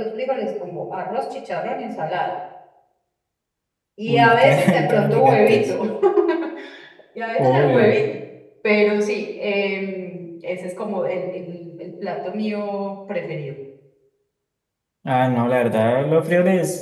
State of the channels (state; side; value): identical; both; correlation 1.00